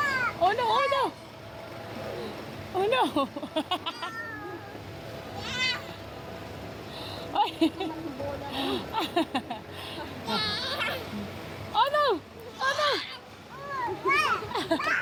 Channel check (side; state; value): both; identical; correlation 1.00